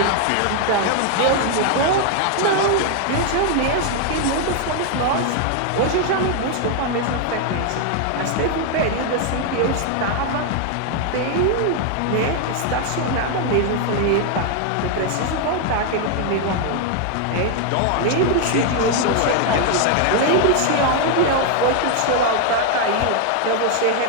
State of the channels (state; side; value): different; both; correlation 0.00